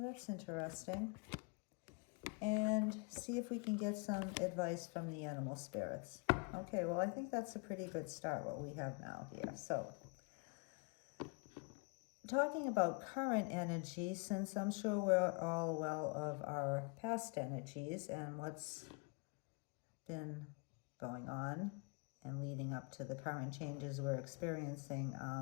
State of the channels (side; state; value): right; quieter; 34.2 dB